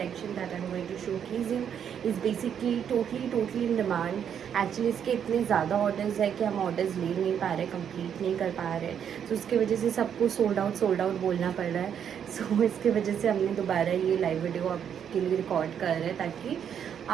that I am going to showcase you is basically totally in demand. Actually इसके इतने ज़्यादा ऑर्डर्स है कि हम ऑर्डर्स ले नहीं पा रहे, कंप्लीट नहीं कर पा रहे. तो उसकी वजह से सबको सोल्ड आउट बोलना पड़ रहा है. सो इसकी वजह से हमने दोबारा ये लाइव वीडियो आपके लिए रिकॉर्ड कर रहे हैं ताकि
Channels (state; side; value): quieter; left; 8.4 dB